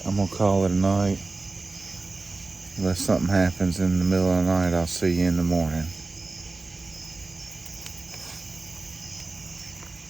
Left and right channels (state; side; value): quieter; left; 3.5 dB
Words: I'm gonna call it a night. Unless something happens in the middle of the night, I'll see you in the morning.